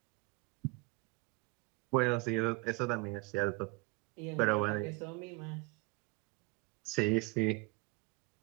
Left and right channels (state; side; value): quieter; left; 25.8 dB